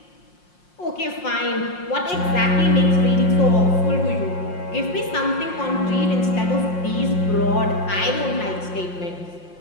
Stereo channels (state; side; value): late; right; 5.6 ms